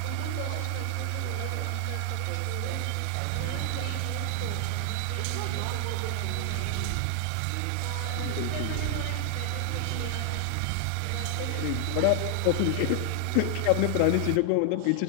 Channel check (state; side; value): different; both; correlation 0.00